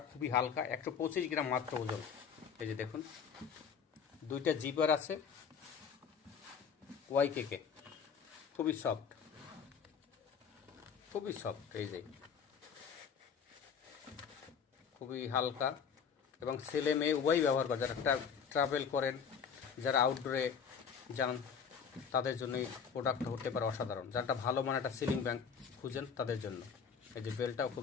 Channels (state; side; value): quieter; right; 6.8 dB